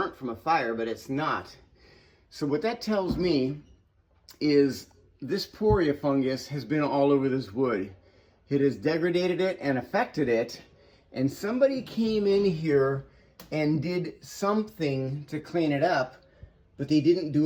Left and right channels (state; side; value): identical; both; correlation 1.00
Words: from a fire, but it's not. So what that tells me is this poria fungus has been all over this wood. It has degraded it and affected it, and somebody came in here and did something to clean it up, but they didn't